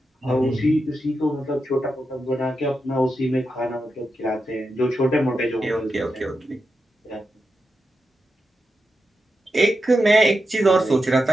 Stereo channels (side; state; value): both; normal; correlation 0.88